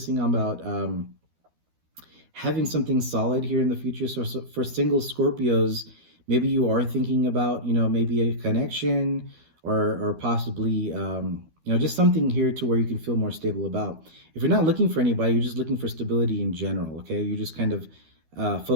on about having something solid here in the future. So for single Scorpios, maybe you are thinking about, maybe a connection or possibly, just something here to where you can feel more stable about. If you're not looking for anybody, you're just looking for stability in general, okay? You're just kind of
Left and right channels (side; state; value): left; late; 12 ms